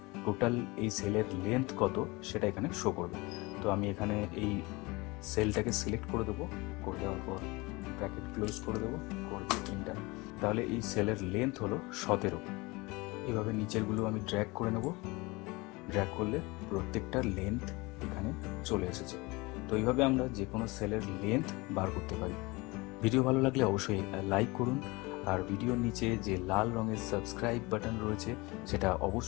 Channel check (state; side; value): quieter; right; 24.1 dB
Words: টোটাল এই সেলের লেন্থ কত সেটা এখানে শো করবে। তো আমি এখানে এই সেলটাকে সিলেক্ট করে দেবো, করে দেওয়ার পর ব্র্যাকেট ক্লোজ করে দেবো, করে দিয়ে এন্টার। তাহলে এই সেলের লেন্থ হলো 17। এইভাবে নিচেরগুলো আমি ড্র্যাগ করে নেব, ড্র্যাগ করলে প্রত্যেকটার লেন্থ এখানে চলে এসেছে। তো এইভাবে আমরা যে কোনো সেলের লেন্থ বার করতে পারি। ভিডিও ভালো লাগলে অবশ্যই লাইক করুন, আর ভিডিওর নিচে যে লাল রঙের সাবস্ক্রাইব বাটন রয়েছে সেটা